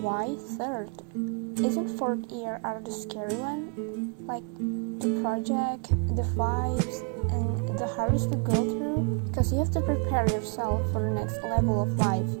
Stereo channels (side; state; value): left; quieter; 35.2 dB